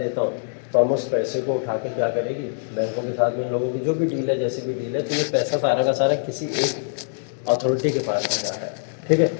हूँ तो हम उस पैसे को उठा के क्या करेगी, बैंकों के साथ में इन लोगों की जो भी डील है, जैसी भी डील है, तो ये पैसा सारा का सारा किसी एक अथॉरिटी के पास में जा रहा है, ठीक है।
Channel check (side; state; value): right; silent; digital silence